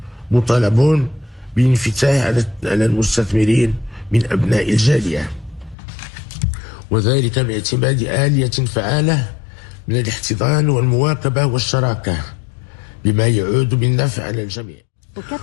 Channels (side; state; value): right; drops out; at 5.8 s